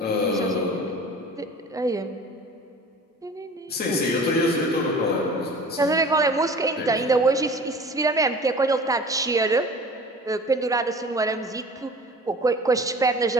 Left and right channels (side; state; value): both; normal; correlation 0.42